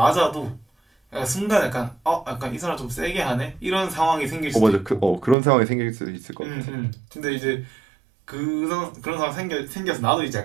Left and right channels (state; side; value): drops out; left; at 5.4 s